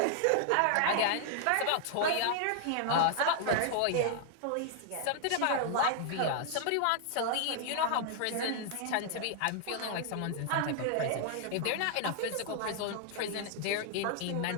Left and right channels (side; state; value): both; different; correlation 0.00